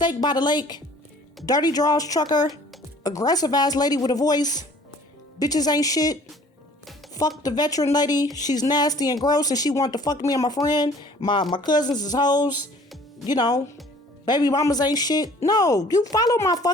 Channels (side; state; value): both; normal; correlation 0.52